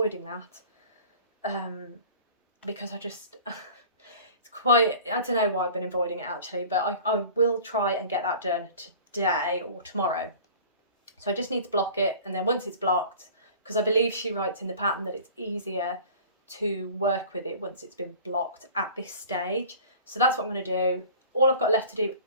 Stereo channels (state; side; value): inverted; both; correlation -0.43